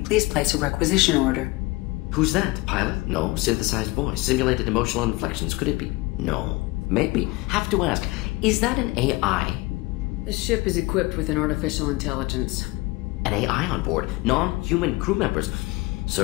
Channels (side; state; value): right; quieter; 22.0 dB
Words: please place a requisition order. Who's that? Pilot? No. Synthesized voice. Simulated emotional inflections. Could it be? No. Maybe. Have to ask. Is that an AI? This ship is equipped with an artificial intelligence. An AI on board? Non-human crew members?